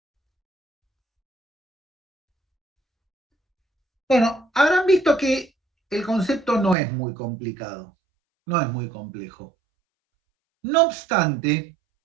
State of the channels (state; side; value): drops out; left; at 6.8 s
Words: Bueno, habrán visto que el concepto no es muy complicado, no es muy complejo. No obstante,